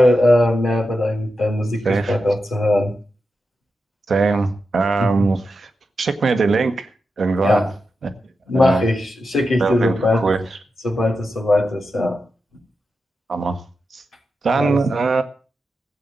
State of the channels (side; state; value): both; normal; correlation 0.89